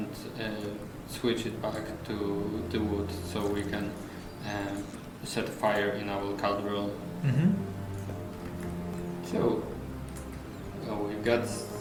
switch it back to the wood, so we can set fire in our cauldron. Mm-hmm. So we got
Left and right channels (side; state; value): both; identical; correlation 1.00